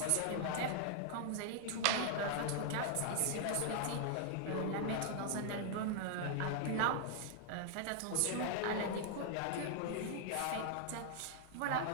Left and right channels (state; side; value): different; both; correlation 0.00